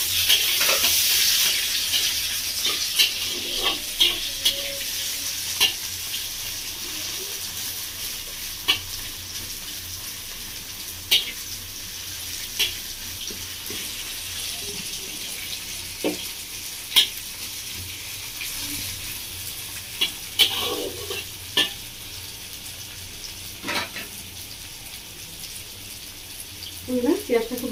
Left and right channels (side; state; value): both; identical; correlation 1.00